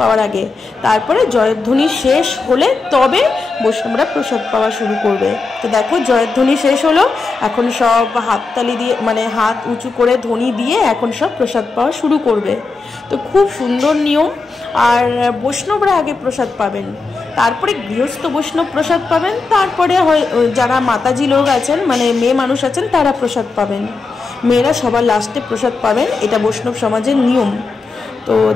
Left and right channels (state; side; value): quieter; right; 4.1 dB